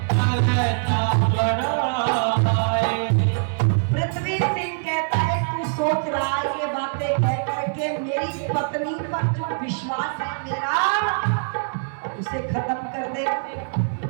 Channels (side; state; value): left; silent; digital silence